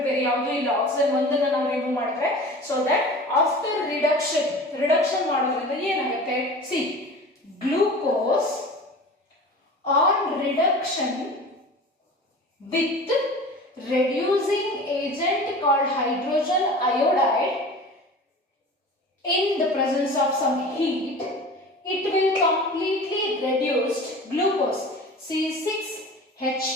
ಬೇರೆ ಯಾವುದೂ ಇಲ್ಲ. ಆಕ್ಸಿಜನ್ ಒಂದನ್ನು ನಾವು ರಿಮೂವ್ ಮಾಡಿದ್ರೆ, ಸೊ ದಟ್ ಆಫ್ಟರ್ ರಿಡಕ್ಷನ್ ಮಾಡೋದ್ರಿಂದ ಏನಾಗುತ್ತೆ, C glucose on reduction with reducing agent called hydrogen iodide in the presence of some heat, it will completely reduce glucose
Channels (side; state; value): both; normal; correlation 0.38